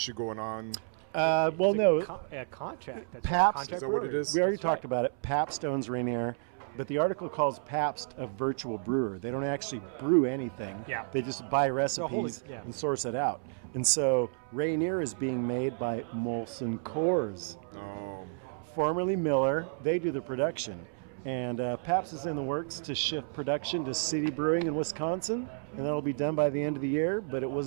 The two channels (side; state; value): left; silent; 57 dB below the other